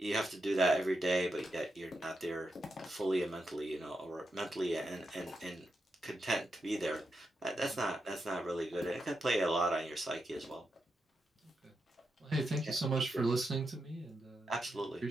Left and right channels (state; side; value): normal; both; correlation 0.85